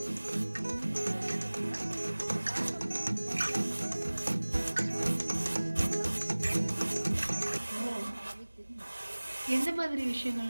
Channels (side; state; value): both; inverted; correlation -1.00